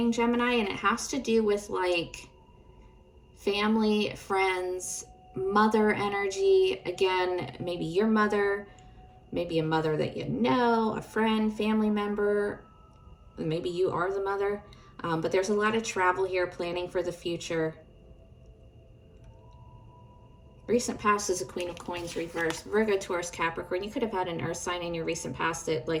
Gemini, and it has to do with like family, friends, mother energy. Again, maybe your mother, maybe a mother that you know, a friend, family member. Maybe you are the mother. But there's a lot of travel here, planning for the future. Recent past is a Queen of Coins reversed. Virgo, Taurus, Capricorn. You could have had an earth sign in your recent past that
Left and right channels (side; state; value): both; identical; correlation 1.00